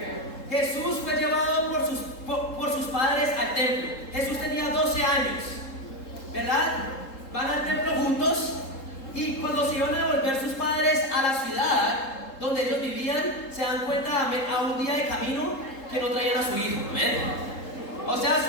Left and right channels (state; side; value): late; right; 3.8 ms